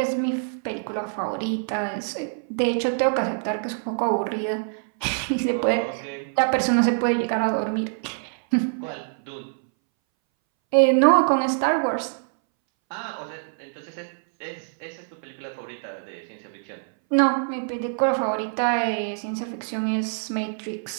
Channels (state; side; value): silent; left; 61 dB below the other